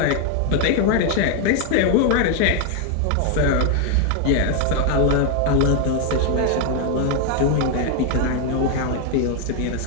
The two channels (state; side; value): different; both; correlation 0.00